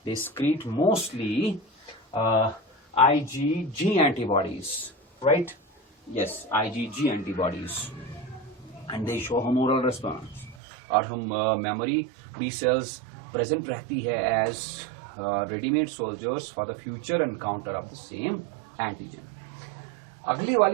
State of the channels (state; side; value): drops out; left; at 10.6 s